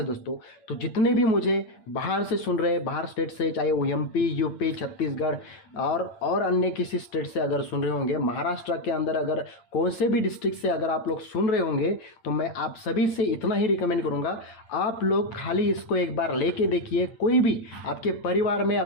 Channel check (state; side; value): late; right; 8.9 ms